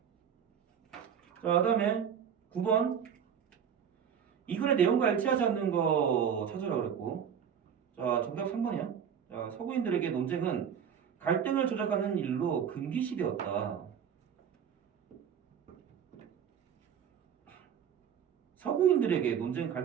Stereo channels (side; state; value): left; quieter; 8.1 dB